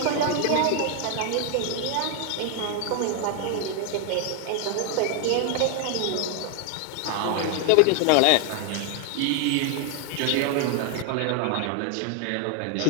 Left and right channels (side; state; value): both; different; correlation 0.00